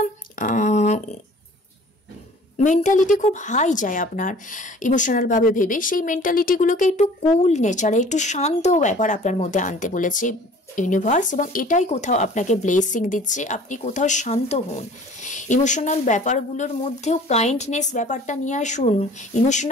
মেন্টালিটি খুব হাই যায় আপনার ইমোশনালভাবে ভেবে। সেই মেন্টালিটিগুলোকে একটু কুল নেচারে, একটু শান্ত ব্যাপার আপনার মধ্যে আনতে বলেছে ইউনিভার্স, এবং এটাই কোথাও আপনাকে ব্লেসিং দিচ্ছে। আপনি কোথাও শান্ত হন, ইমোশনাল ব্যাপারগুলোর মধ্যেও কাইন্ডনেস ব্যাপারটা নিয়ে আসুন।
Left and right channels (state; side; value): normal; both; correlation 0.49